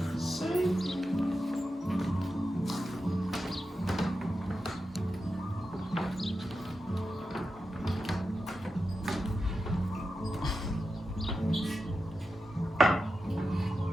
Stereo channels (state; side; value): normal; both; correlation 0.90